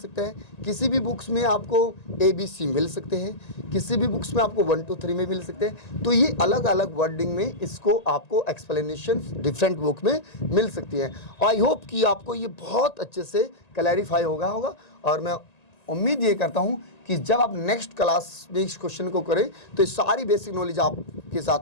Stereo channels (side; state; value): right; late; 1.9 ms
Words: है, किसी भी बुक्स में आपको ABC मिल सकते हैं, किसी भी बुक्स में आपको 1 2 3 में मिल सकते हैं। तो ये अलग अलग वर्डिंग में इसको आपको एक्सप्लेनेशन डिफरेंट बुक में मिल सकती है। आई होप कि आपको ये बहुत अच्छे से क्लैरिफाई होगा और मैं उम्मीद ये करता हूँ कि जब आप नेक्स्ट क्लास में इस क्वेश्चन को करें तो ये सारी बेसिक नॉलेज आपके